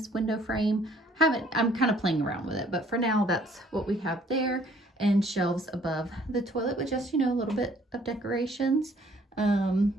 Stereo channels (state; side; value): normal; both; correlation 0.60